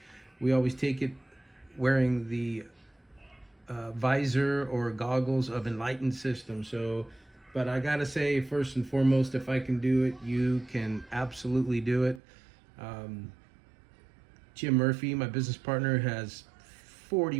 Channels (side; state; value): left; drops out; at 12.2 s